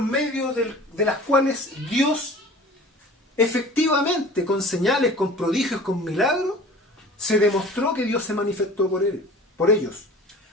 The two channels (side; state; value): both; normal; correlation 0.43